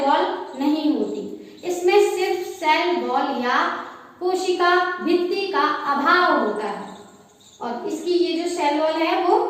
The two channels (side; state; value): both; identical; correlation 1.00